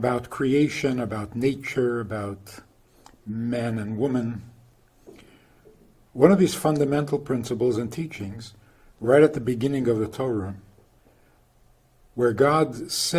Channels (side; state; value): both; identical; correlation 1.00